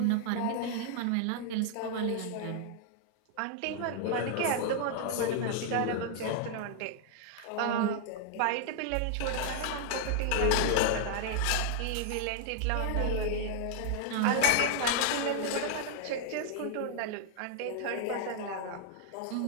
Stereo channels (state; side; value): different; both; correlation -0.01